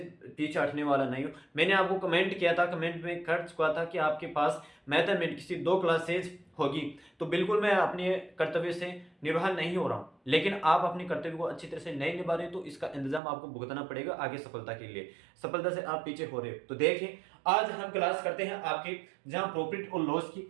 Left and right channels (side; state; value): left; drops out; at 13.2 s